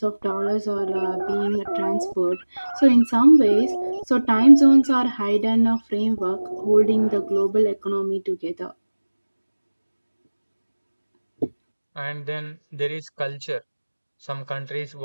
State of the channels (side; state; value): both; inverted; correlation -1.00